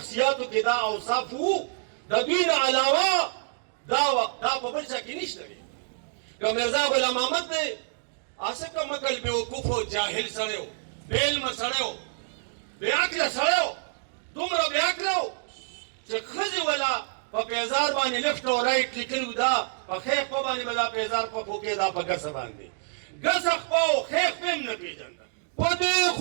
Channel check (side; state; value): left; silent; digital silence